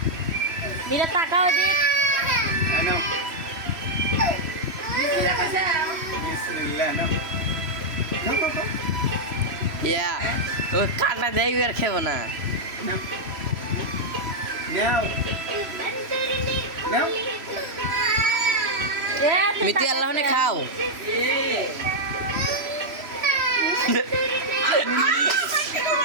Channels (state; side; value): late; left; 3.0 ms